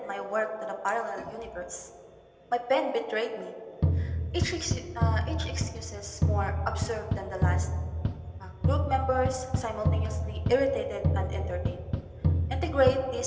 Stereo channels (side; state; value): both; identical; correlation 1.00